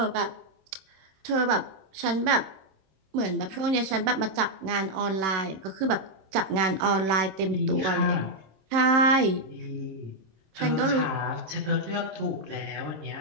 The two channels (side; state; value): left; late; 26 ms